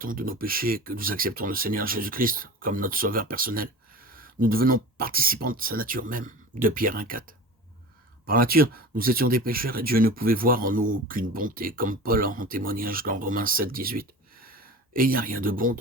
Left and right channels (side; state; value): both; normal; correlation 0.35